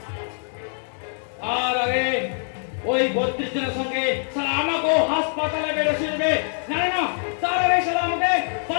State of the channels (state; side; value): silent; right; digital silence